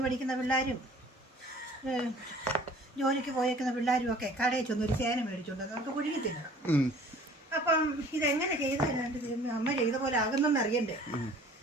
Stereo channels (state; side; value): normal; both; correlation 0.50